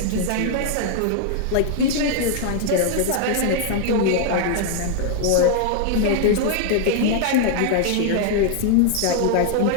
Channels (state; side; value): different; both; correlation 0.00